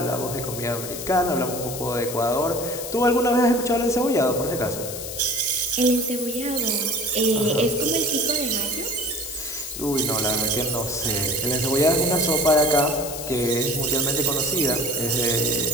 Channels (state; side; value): noise; left; hiss, 8 dB below the sound